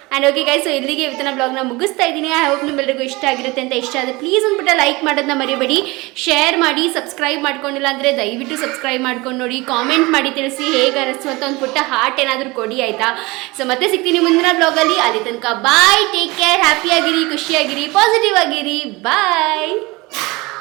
ಆ್ಯಂಡ್ ಓಕೆ ಗೈಸ್, ಸೊ ಇಲ್ಲಿಗೆ ಇವತ್ತಿನ ಬ್ಲಾಗ್ನ ಮುಗಿಸ್ತಾ ಇದ್ದೀನಿ. ಐ ಹೋಪ್ ನಿಮ್ಮೆಲ್ಲರಿಗೂ ಇಷ್ಟ ಆಗಿರುತ್ತೆ ಅಂತ. ಇಷ್ಟ ಆದರೆ ಪ್ಲೀಸ್ ಅಂದ್ಬಿಟ್ಟು ಲೈಕ್ ಮಾಡೋದನ್ನ ಮರಿಬೇಡಿ, ಶೇರ್ ಮಾಡಿ, ಸಬ್ಸ್ಕ್ರೈಬ್ ಮಾಡ್ಕೊಂಡಿಲ್ಲ ಅಂದರೆ ದಯವಿಟ್ಟು ಸಬ್ಸ್ಕ್ರೈಬ್ ಮಾಡ್ಕೊಂಡು ನೋಡಿ, ಕಾಮೆಂಟ್ ಮಾಡಿ ತಿಳಿಸಿ ಹೇಗೆ ಅನಿಸ್ತು ಅಂತ ಒಂದು ಪುಟ್ಟ ಹಾರ್ಟ್ ಏನಾದರೂ ಕೊಡಿ ಆಯಿತಾ. ಸೊ ಮತ್ತೆ ಸಿಗ್ತೀನಿ ಮುಂದಿನ ಬ್ಲಾಗಲ್ಲಿ. ಅಲ್ಲಿ ತನಕ ಬಾಯ್, ಟೇಕ್ ಕೇರ್, ಹ್ಯಾಪಿಯಾಗಿರಿ, ಖುಷಿಯಾಗಿರಿ, ಪಾಸಿಟಿವ್ ಆಗಿರಿ, ಬಾಯ್.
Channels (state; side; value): quieter; left; 23.2 dB